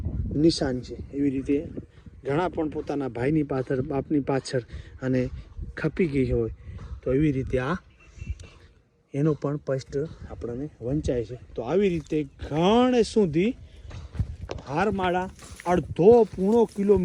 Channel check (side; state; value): both; identical; correlation 1.00